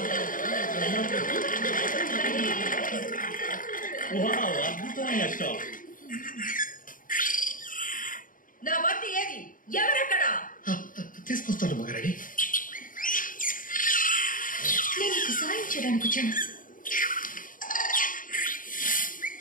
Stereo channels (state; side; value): late; right; 0.39 ms